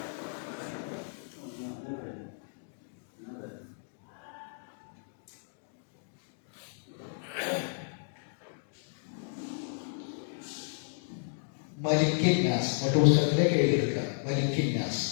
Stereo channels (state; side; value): silent; right; digital silence